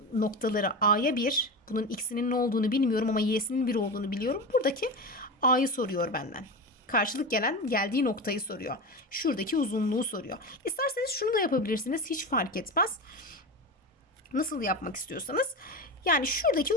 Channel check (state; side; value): normal; both; correlation 0.22